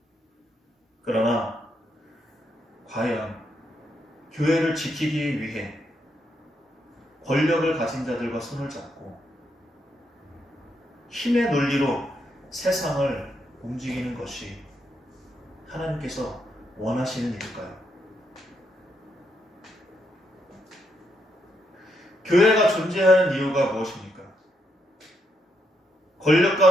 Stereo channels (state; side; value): normal; both; correlation 0.79